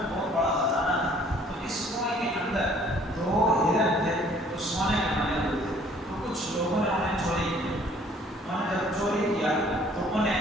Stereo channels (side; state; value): both; normal; correlation 0.58